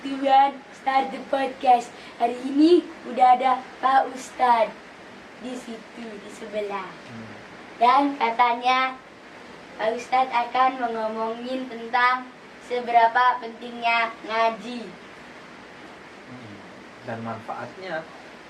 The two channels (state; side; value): identical; both; correlation 1.00